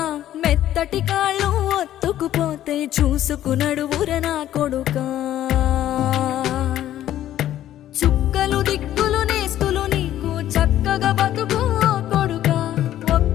మెత్తటి కాళ్ళు ఒత్తుకుపోతే చూసుకునడువుర నా కొడుకా చుక్కలు దిక్కులు నేస్తులు నీకు చక్కగా బతుకు కొడుకా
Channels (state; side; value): quieter; right; 12.4 dB